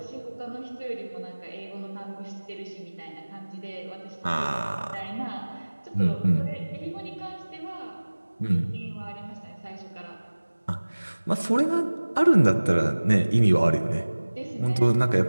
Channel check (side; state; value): both; inverted; correlation -1.00